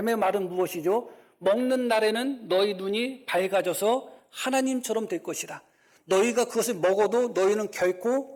말은 무엇이죠? 먹는 날에는 너희 눈이 밝아져서 하나님처럼 될 것이다. 너희가 그것을 먹어도 너희는 결코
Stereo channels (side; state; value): both; identical; correlation 1.00